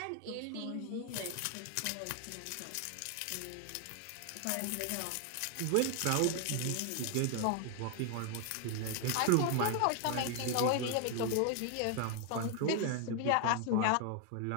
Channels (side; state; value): both; different; correlation 0.00